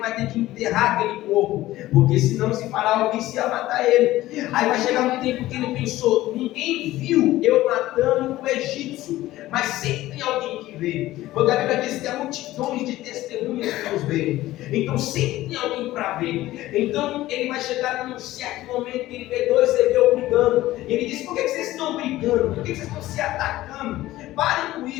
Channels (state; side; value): quieter; right; 16.1 dB